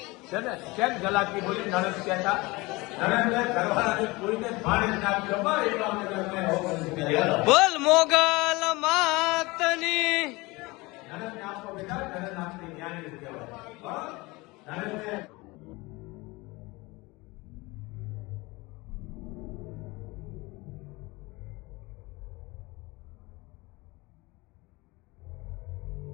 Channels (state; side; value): quieter; right; 23.2 dB